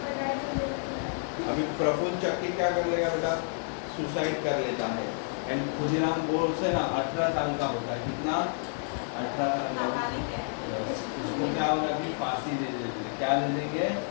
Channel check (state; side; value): silent; right; 58 dB below the other